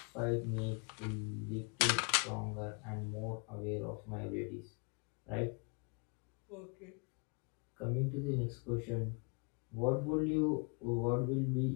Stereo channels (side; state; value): right; quieter; 35.5 dB